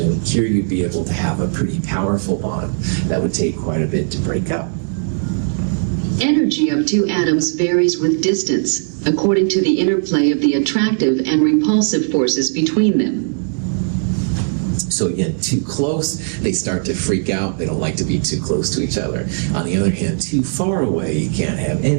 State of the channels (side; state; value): left; silent; digital silence